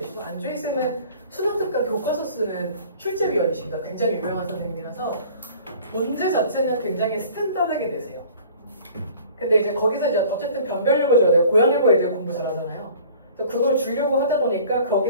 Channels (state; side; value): inverted; both; correlation -0.49